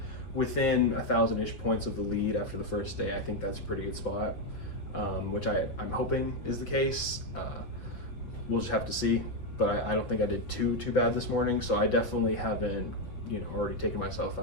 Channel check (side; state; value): right; late; 6.3 ms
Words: within 1,000-ish points of the lead after the first day, I think that's a pretty good spot, which I'm hoping is the case. We'll just have to see, but I don't think I did too bad this morning. So I definitely haven't already taken myself